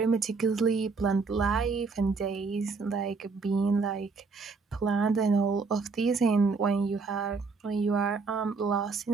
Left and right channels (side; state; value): left; quieter; 4.5 dB